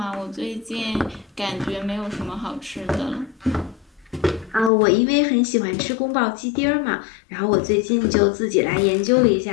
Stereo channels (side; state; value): right; drops out; at 4.7 s